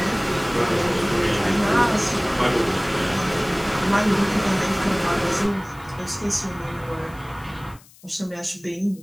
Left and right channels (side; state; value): left; noise; hiss, 25 dB below the sound